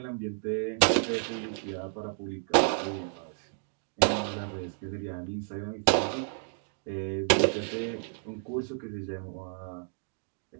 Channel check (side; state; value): left; silent; 57 dB below the other